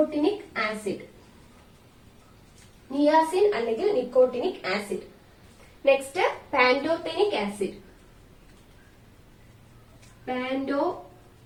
ആസിഡ്, നിയാസിൻ അല്ലെങ്കിൽ nicotinic acid. Next pantothenic acid, pantothenic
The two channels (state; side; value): identical; both; correlation 1.00